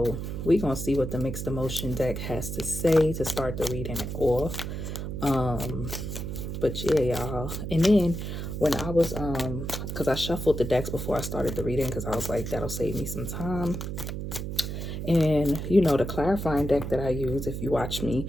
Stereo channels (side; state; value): right; noise; hum, 5 dB below the sound